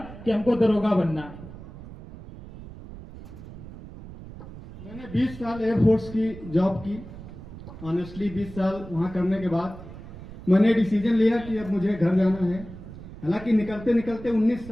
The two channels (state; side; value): noise; right; rumble, 14 dB below the sound